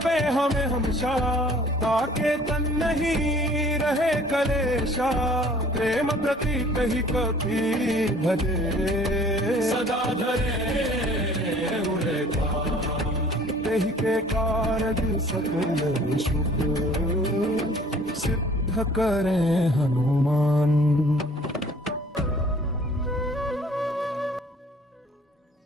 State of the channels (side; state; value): both; normal; correlation 0.53